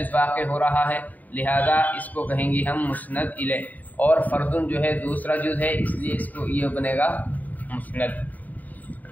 واقع ہو رہا ہے، لہذا اس کو کہیں گے ہم مسند الیہ، اور فردن جو ہے دوسرا جز ہے، اس لیے اس کو یہ بنے گا مسند۔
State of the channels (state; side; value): late; right; 0.079 ms